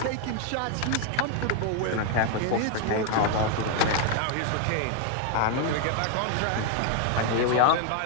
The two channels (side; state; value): both; different; correlation 0.00